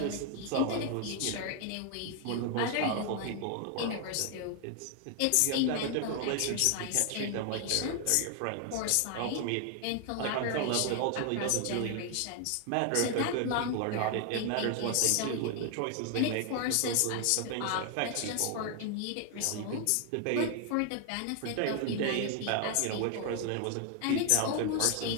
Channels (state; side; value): different; both; correlation 0.00